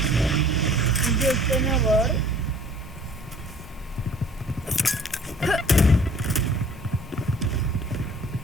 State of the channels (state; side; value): normal; both; correlation 0.52